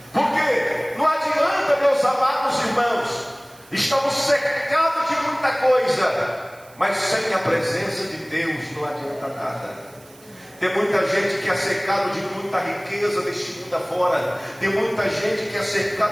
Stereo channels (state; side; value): noise; right; hiss, 25 dB below the sound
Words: Porque não adianta, meus amados irmãos, estamos cercados de muita coisa, mas sem a presença de Deus não adianta nada. Tem muita gente que é cercado de muita riqueza deste mundo afora. Tem muita gente que é